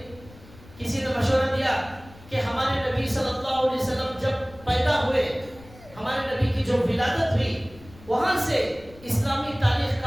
کسی نے مشورہ دیا کہ ہمارے نبی صلی اللہ علیہ وسلم جب پیدا ہوئے، ہمارے نبی کی جو ولادت ہوئی، وہاں سے اسلامی تاریخ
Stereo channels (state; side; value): noise; left; rumble, 21 dB below the sound